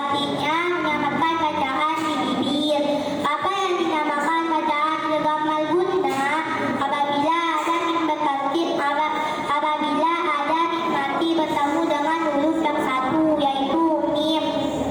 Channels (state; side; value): identical; both; correlation 1.00